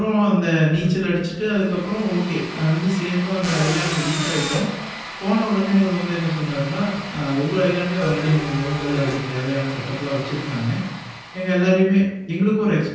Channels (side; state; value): both; identical; correlation 1.00